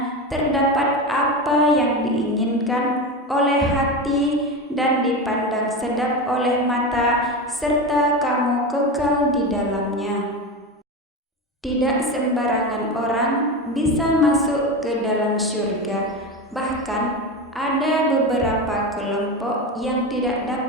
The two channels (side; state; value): both; normal; correlation 0.21